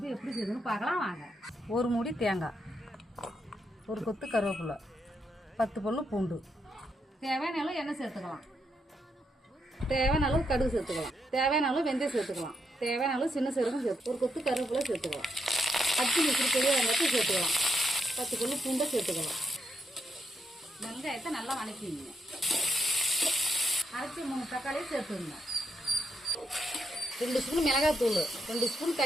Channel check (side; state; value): both; normal; correlation 0.80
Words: எப்படி செய்யுதுன்னு பார்க்கலாம் வாங்க. ஒரு மூடி தேங்காய், ஒரு கொத்து கருவேப்பிலை, 10 பல்லு பூண்டு, தேவையான அளவு எண்ணெய் சேர்த்துக்கலாம், தேவையான அளவு கடுகு சேர்த்துக்கலாம், தேவையான அளவு வெந்தயம் சேர்த்துக்கலாம், தேவையான அளவு சின்ன சீரகம் சேர்த்து ஒரு கொத்து கருவேப்பிலை சேர்த்துக்கலாம், 10 நிமிஷம் பெரிய வெங்காயத்தை சேர்த்துக்கலாம், 10 பல்லு பூண்டை சேர்த்துக்கலாம். வெங்காயத்தை நல்லா வணக்கிங்க. அரைச்சி 3 தக்காளியை சேர்த்துங்க. 2 ஸ்பூன் மிளகாய்த்தூள், 2 ஸ்பூன்